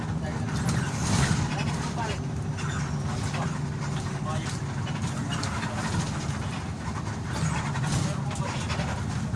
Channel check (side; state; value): both; identical; correlation 1.00